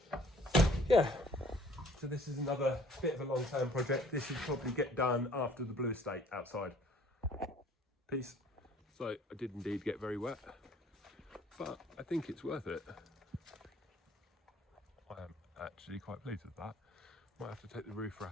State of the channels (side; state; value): both; normal; correlation 0.55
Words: yeah. So this is another bit of a long-term project. This should probably get done after the blue estate outside. Peace. So I did indeed get very wet, but I think it's worth it. I am actually quite pleased with that. Might have to take the roof